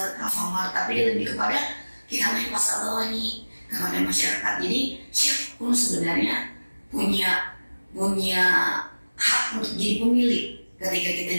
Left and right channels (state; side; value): inverted; both; correlation -1.00